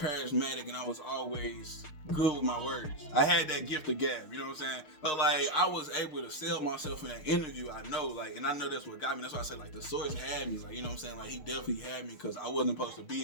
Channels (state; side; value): late; right; 6.5 ms